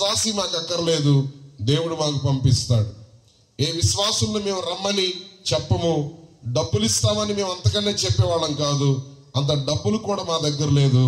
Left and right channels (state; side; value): identical; both; correlation 1.00